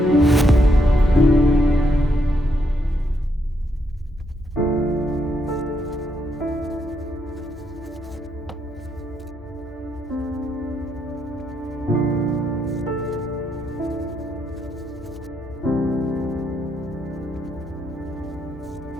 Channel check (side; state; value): both; normal; correlation 0.77